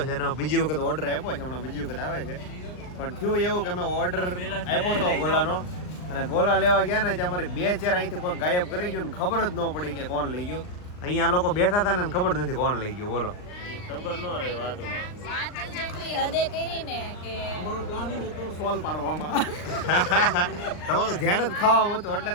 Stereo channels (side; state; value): right; late; 39 ms